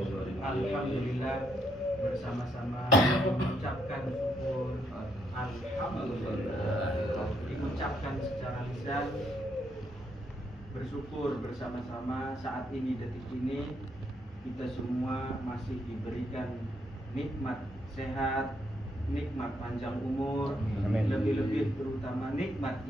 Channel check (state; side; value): normal; both; correlation 0.75